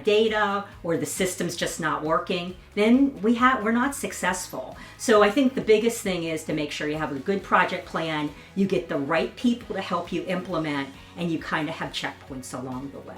data or the system's just not working, then we're not successful. So I think the biggest thing is to make sure you have a good project plan, you get the right people to help you implement, and you kind of have checkpoints along the way.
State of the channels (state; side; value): identical; both; correlation 1.00